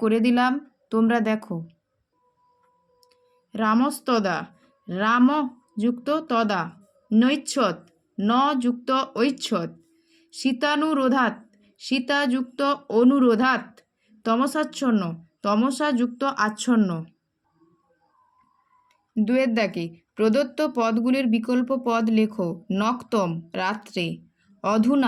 করে দিলাম, তোমরা দেখো। রামস্তদা, রাম যুক্ত তদা, নৈচ্ছদ, ন যুক্ত ঐচ্ছদ, শীতানুরোধাৎ, সীতা যুক্ত অনুরোধাৎ, তমসাচ্ছন্ন, তমসা যুক্ত আচ্ছন্ন। 2-এর দাগে প্রদত্ত পদগুলির বিকল্প পদ লেখো। নক্তম, রাত্রে,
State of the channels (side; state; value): both; identical; correlation 1.00